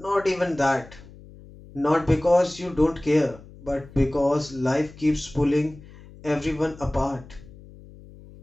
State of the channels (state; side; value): noise; left; hum, 20 dB below the sound